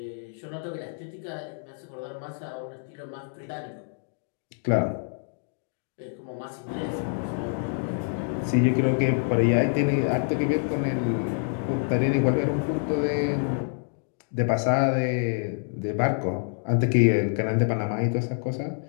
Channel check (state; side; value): silent; right; 60 dB below the other